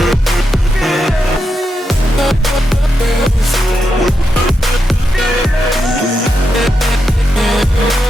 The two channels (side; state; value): both; normal; correlation 0.85